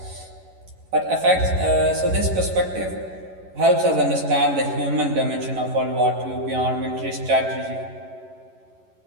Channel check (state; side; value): late; left; 11 ms